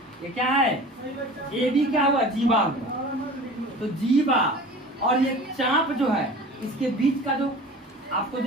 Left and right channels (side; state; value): both; normal; correlation 0.39